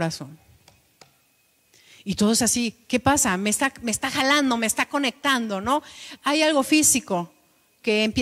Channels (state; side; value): identical; both; correlation 1.00